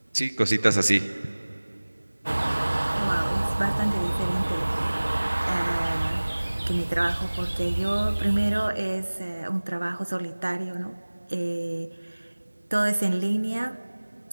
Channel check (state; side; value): inverted; both; correlation -1.00